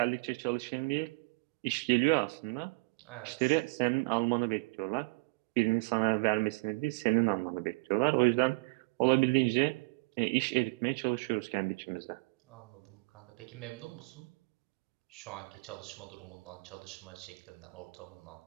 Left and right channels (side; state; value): left; quieter; 28.7 dB